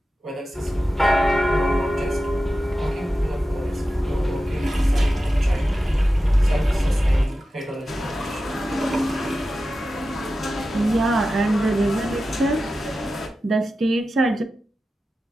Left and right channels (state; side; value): normal; both; correlation 0.93